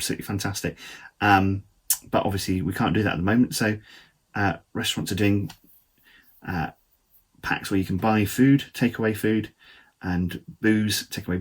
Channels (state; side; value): identical; both; correlation 1.00